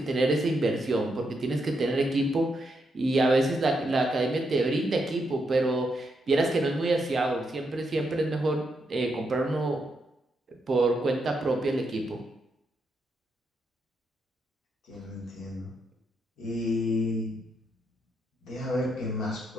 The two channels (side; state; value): both; normal; correlation 0.81